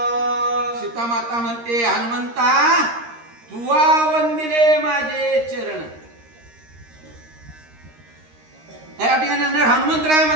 सीता माता म्हणते हनुमंता तुवा वंदिले माझे चरण. या ठिकाणी हनुमंतराय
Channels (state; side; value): late; left; 13 ms